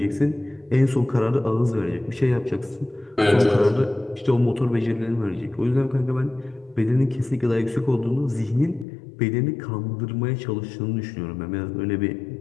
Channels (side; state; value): right; drops out; at 8.8 s